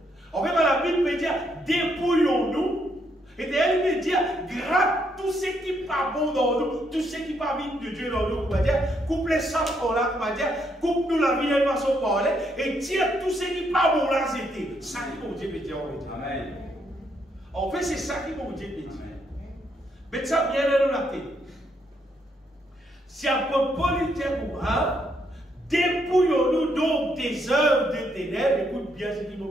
En fait, la Bible veut dire, dépouillons-nous. Et elle veut dire, gratte tout ce qui n'est pas bon dans nous, tout ce qui n'est pas bien de Dieu dans nous, on va dire, coupe les samples là, on va dire, coupe-nous la vie de façon parler, et tire tout ce qui n'est pas bon là, c'était. Ça qui mon Dieu veut dire, on va dire. Amen. En fait, c'est ça qui mon Dieu veut dire. Mais ça vient dans la tête. Si un peu politique ou un, dépouillons-nous donc des œuvres de ténèbres. Écoute bien ce qui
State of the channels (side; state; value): both; normal; correlation 0.75